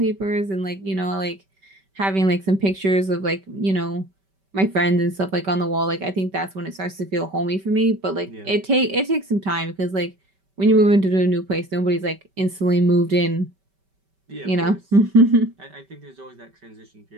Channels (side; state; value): left; late; 5.2 ms